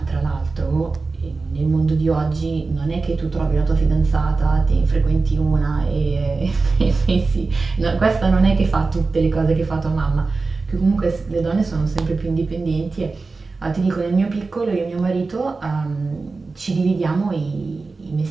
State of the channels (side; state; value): left; quieter; 3.9 dB